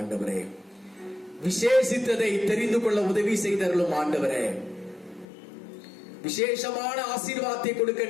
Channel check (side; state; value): right; drops out; at 5.2 s